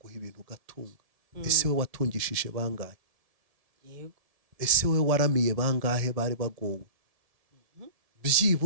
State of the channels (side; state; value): left; late; 1.7 ms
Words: ibintu ugatunga. Ese we watungishije bangahe? yego, Ese we waramiye bangahe bari bagowe?